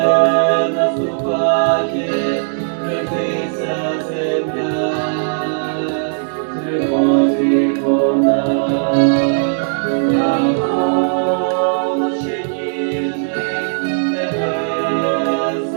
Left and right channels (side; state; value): left; silent; 68 dB below the other